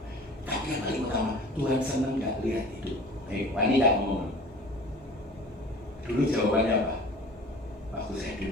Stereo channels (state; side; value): normal; both; correlation 0.43